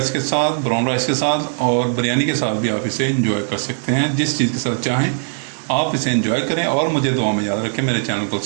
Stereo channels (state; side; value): silent; left; digital silence